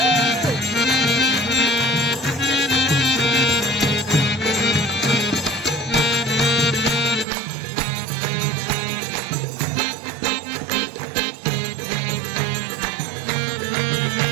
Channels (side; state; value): left; drops out; at 7.2 s